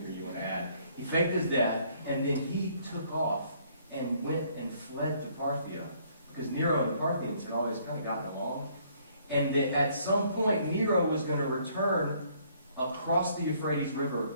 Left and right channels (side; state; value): both; inverted; correlation -0.64